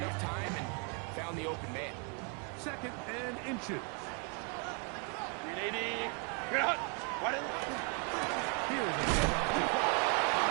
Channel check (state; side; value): quieter; left; 36.6 dB